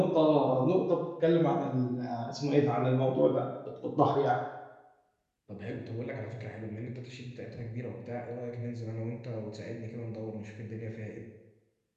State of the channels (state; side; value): identical; both; correlation 1.00